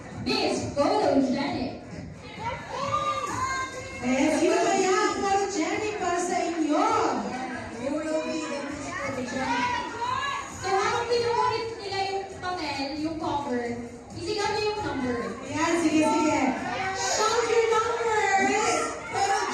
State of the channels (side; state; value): both; identical; correlation 1.00